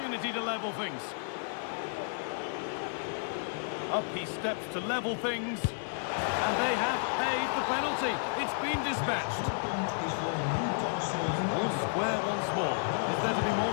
to level things. Up he steps to level things. And they have paid the penalty. It's been dispatched. All square once more. Is there to be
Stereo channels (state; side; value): silent; right; digital silence